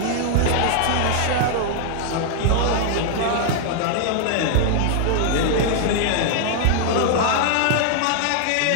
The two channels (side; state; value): both; different; correlation 0.00